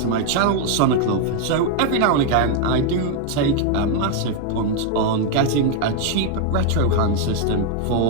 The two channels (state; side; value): different; both; correlation 0.00